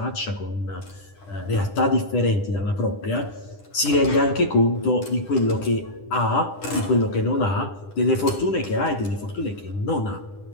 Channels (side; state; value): right; late; 10 ms